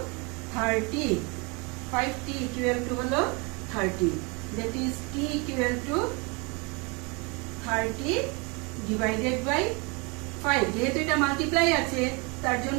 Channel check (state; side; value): quieter; left; 29.8 dB